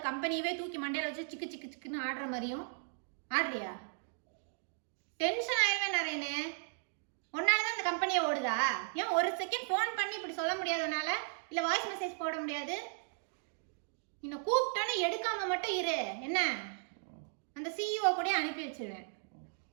கம்பெனியவே தூக்கி மண்டையில வச்சு சிக்கு சிக்கு சிக்குன்னு ஆடுற மாதிரியும் ஆடுறியா? டென்ஷன் ஆயிடுவேன் நரேனு. உன்னாலதான் இந்த கம்பெனியை ஓடுதா? ஏன் ஒரு செகண்ட் ஃபோன் பண்ணி இப்படி சொல்ல முடியாதனால? இல்ல வாய்ஸ் மெசேஜ் போட முடியாது? இன்னும் கூப்பிட்டோன்னு எடுக்காம மட்டும் இரு. என்ன அந்த சிஇஓ கூட அனுப்பி வச்சிருவேன்.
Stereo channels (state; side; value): silent; left; digital silence